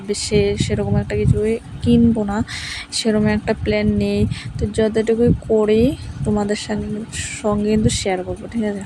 বেশি সেরকম একটা কিছুই কিনবো না, সেরকম একটা প্ল্যান নেই। তো যতটুকুই করি তোমাদের সঙ্গে কিন্তু শেয়ার করবো, ঠিক আছে?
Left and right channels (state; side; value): identical; both; correlation 1.00